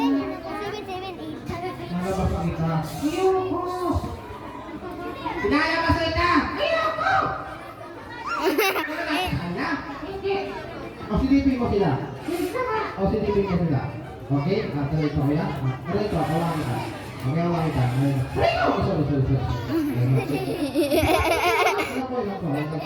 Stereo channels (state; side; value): identical; both; correlation 1.00